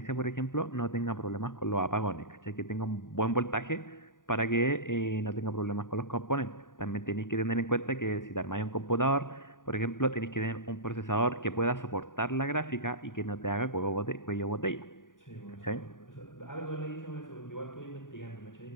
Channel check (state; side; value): late; right; 0.89 ms